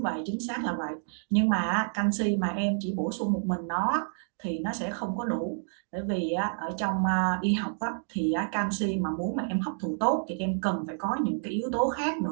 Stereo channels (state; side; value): silent; left; digital silence